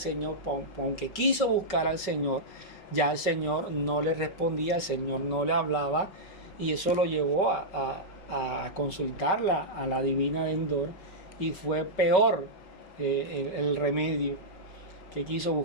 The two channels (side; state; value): right; late; 5.3 ms